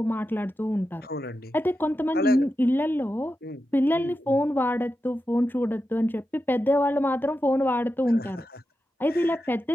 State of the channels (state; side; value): normal; both; correlation 0.90